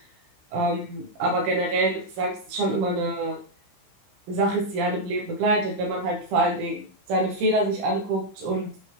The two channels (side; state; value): left; late; 16 ms